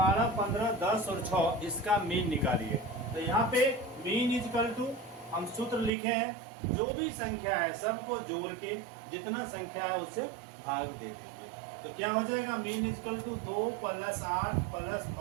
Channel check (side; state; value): left; drops out; at 5.9 s